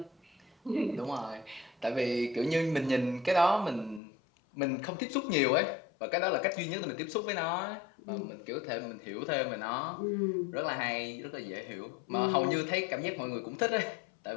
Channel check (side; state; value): right; drops out; at 4.0 s